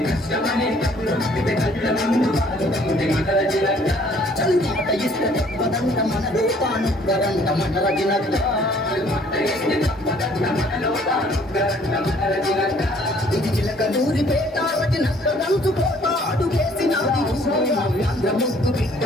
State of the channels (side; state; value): both; normal; correlation 0.59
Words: చల్మాట ఇస్తే తప్పదంట మన లోకానుగ్గరంట మన రజనక్క ఇది చిలకలూరి పేట రజనక్క కంచుకోట అడుగేసినాది నవ్యాంధ్ర ముద్దు బిడ్డ